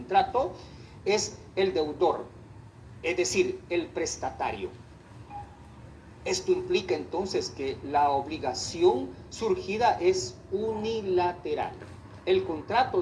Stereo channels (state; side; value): identical; both; correlation 1.00